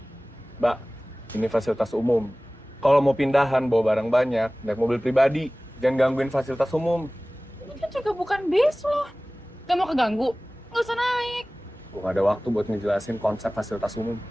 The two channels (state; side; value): normal; both; correlation 0.98